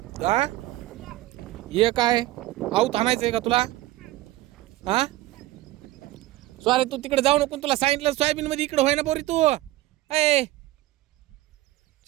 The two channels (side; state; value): left; quieter; 16.9 dB